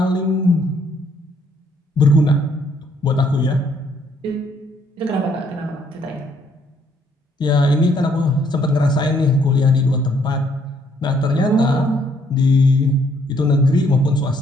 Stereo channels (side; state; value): both; normal; correlation 0.67